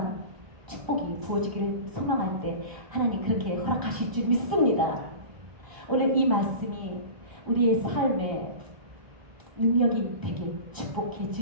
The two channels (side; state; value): left; late; 1.0 ms